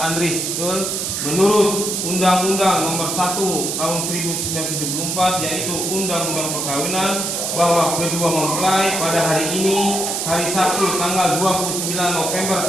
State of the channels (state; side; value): noise; right; hiss, 2 dB below the sound